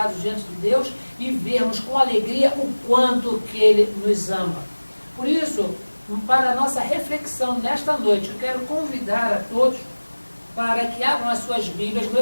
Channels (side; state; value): both; inverted; correlation -1.00